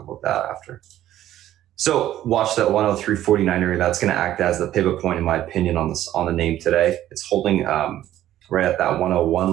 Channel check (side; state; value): left; quieter; 12.9 dB